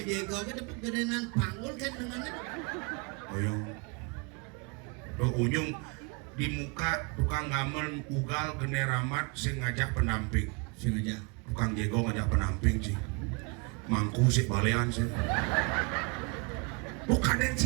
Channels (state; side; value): quieter; left; 32.2 dB